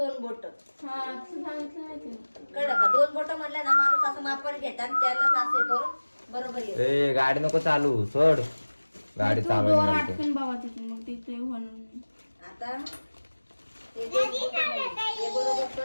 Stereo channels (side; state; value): both; inverted; correlation -1.00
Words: बोट हा असं सांगितलं नाही तिने. कळलं का. 2 बोट म्हणलं ना माणूस असं मापावर घेतात, त्यालाच असे करून बरोबर येत. ए गाडी नको चालू, सोड गाडी तू दोर चालू. अटकून बाबा तिथून, मग तिथे म्हणून आता हे 2 बोटं नाही. हे बरोबर